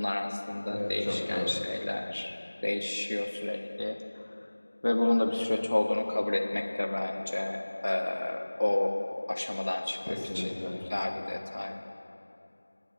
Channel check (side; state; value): both; inverted; correlation -1.00